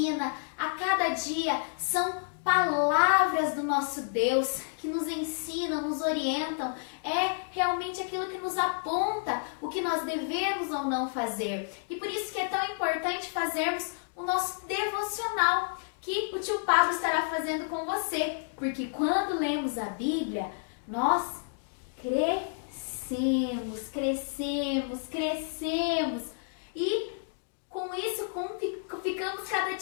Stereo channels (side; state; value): right; silent; digital silence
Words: a cada dia. São palavras do nosso Deus que nos ensinam, nos orientam. É realmente aquilo que nos aponta o que nós devemos ou não fazer. E por isso que é tão importante fazermos o nosso devocional, que o tio Pablo estará fazendo com você. Porque quando lemos a Bíblia, nós crescemos. E com isso ficamos cada